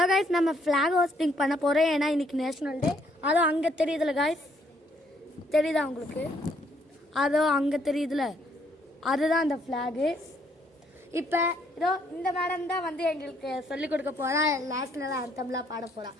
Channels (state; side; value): normal; both; correlation 0.68